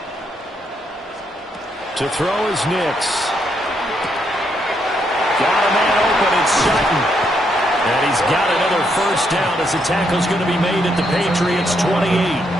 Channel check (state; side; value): normal; both; correlation 0.76